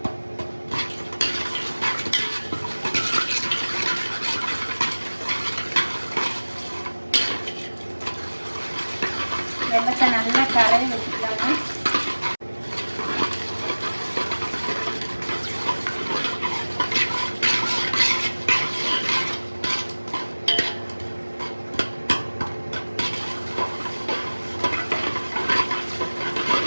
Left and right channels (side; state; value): both; inverted; correlation -1.00